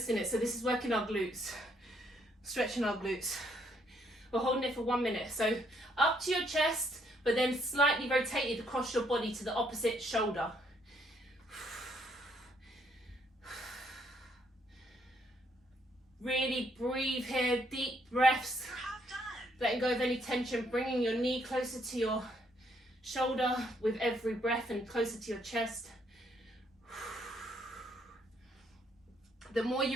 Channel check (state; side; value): normal; both; correlation 0.70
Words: in it. So this is working our glutes, stretching our glutes. We're holding it for 1 minute. So up to your chest, but then slightly rotated across your body to the opposite shoulder. Really breathe here, deep breaths. Letting go of any tension, bringing your knee closer to your shoulder with every breath and closer to your chest. The more